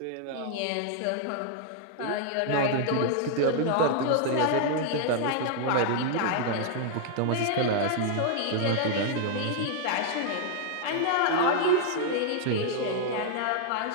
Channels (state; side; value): different; both; correlation 0.00